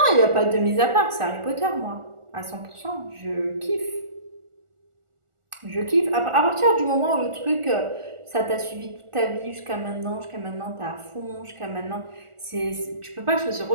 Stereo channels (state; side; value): late; left; 1.4 ms